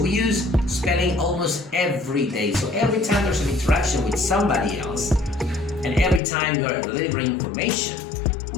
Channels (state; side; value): drops out; right; at 6.2 s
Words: we use spelling almost every day. So every time there's an interaction with somebody else, and every time you are delivering information,